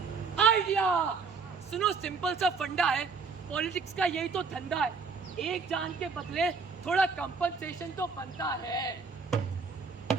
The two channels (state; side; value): quieter; left; 4.8 dB